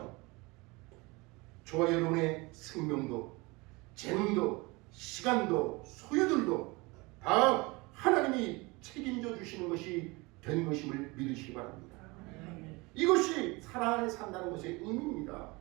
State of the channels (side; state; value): left; quieter; 24.9 dB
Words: 저와 여러분의 생명도, 재능도, 시간도, 소유들도 다 하나님이 책임져 주시는 것이 된 것임을 믿으시기 바랍니다. 이것이 사랑 안에 산다는 것의 의미입니다.